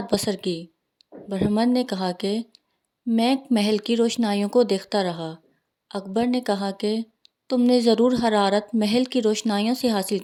بسر کی؟ برہمن نے کہا کہ میں محل کی روشنائیوں کو دیکھتا رہا۔ اکبر نے کہا کہ تم نے ضرور حرارت محل کی روشنائیوں سے حاصل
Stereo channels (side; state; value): both; identical; correlation 1.00